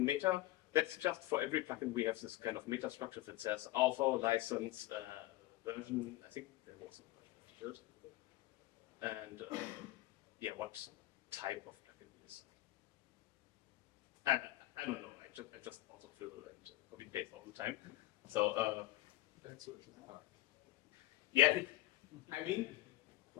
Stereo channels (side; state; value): right; quieter; 16.7 dB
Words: that's just for every plugin we have this kind of meta structure that says author, license, version, I think there was a version field, and yeah, what type of plugin it is. I don't know, I just also fill and copy paste all the time. So That's what it's about. yeah, I mean,